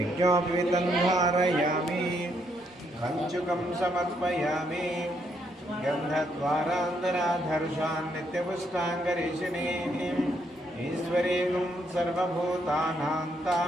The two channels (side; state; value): both; normal; correlation 0.74